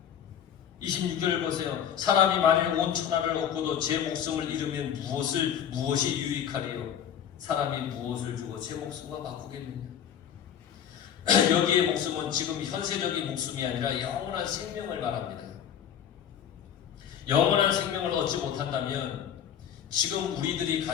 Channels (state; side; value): quieter; right; 9.1 dB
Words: 26절을 보세요. 사람이 만일 온 천하를 얻고도 제 목숨을 잃으면 무엇이 유익하리요? 사람이 무엇을 주고 제 목숨과 바꾸겠느냐? 여기의 목숨은 지금 현세적인 목숨이 아니라 영원한 생명을 말합니다. 영원한 생명을 얻지 못한다면 지금 우리들이